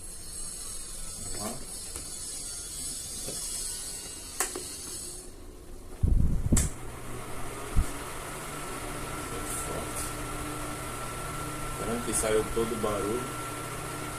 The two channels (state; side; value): identical; both; correlation 1.00